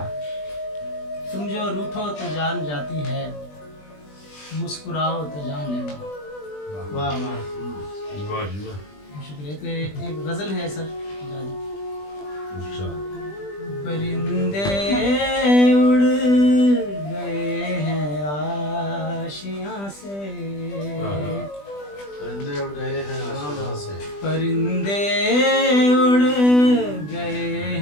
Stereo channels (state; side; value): late; right; 20 ms